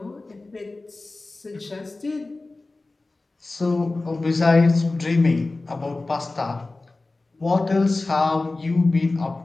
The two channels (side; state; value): right; quieter; 3.2 dB